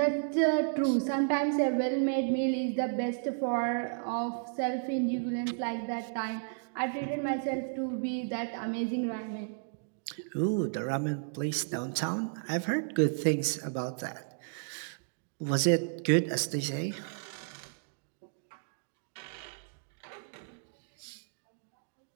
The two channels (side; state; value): left; silent; digital silence